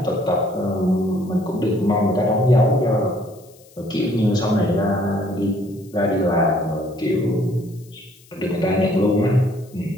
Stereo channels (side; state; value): left; noise; hiss, 27 dB below the sound